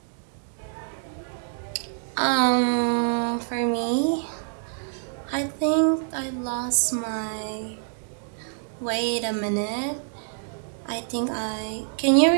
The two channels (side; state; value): left; silent; digital silence